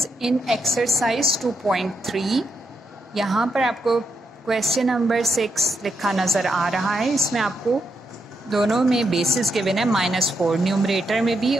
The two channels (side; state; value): both; normal; correlation 0.82